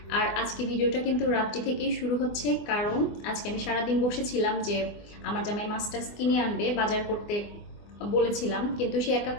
আর আজকে ভিডিওটা কিন্তু রাত্রি থেকেই শুরু হচ্ছে, কারণ আজকে আমি সারাদিন বসেছিলাম যে আমার জামাই মাছটা কিনে আনবে, বাজার করতে বলেছিলাম, কিন্তু সে একা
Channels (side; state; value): right; late; 24 ms